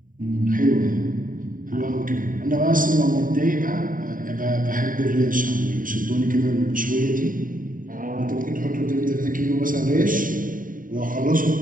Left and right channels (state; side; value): late; left; 0.40 ms